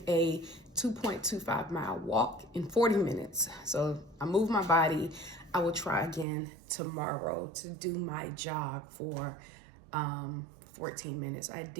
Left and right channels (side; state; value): left; drops out; at 6.2 s